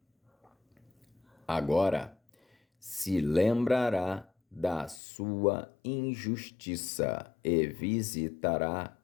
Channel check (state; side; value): drops out; right; at 5.0 s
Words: Agora se lembrará da sua injustiça e visitará